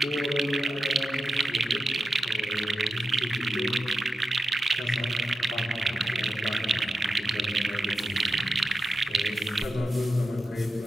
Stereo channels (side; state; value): both; normal; correlation 0.89